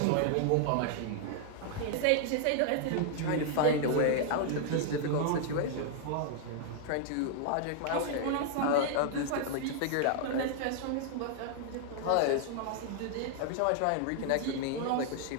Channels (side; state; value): both; different; correlation -0.01